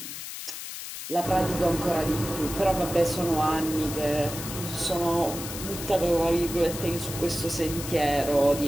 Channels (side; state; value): left; noise; hiss, 9 dB below the sound